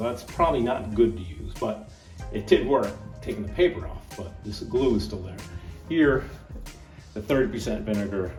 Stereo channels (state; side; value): identical; both; correlation 1.00